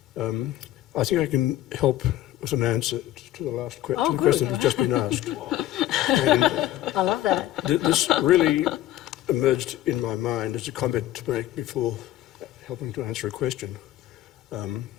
I think I can help with an answer to the last question that has just been asked. And I love that. this really emerged in my mind as a comment to make before helping to answer a question,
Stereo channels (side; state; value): right; quieter; 14.1 dB